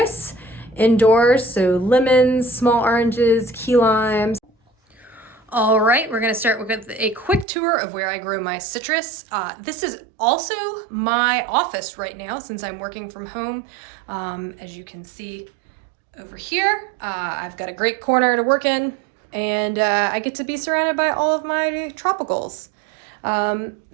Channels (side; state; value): left; drops out; at 7.5 s